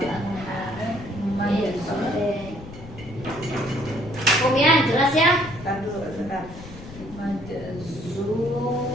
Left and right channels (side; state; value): left; noise; rumble, 15 dB below the sound